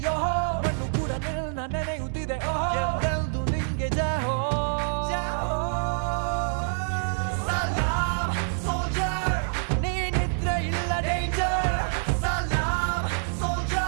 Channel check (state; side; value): silent; left; digital silence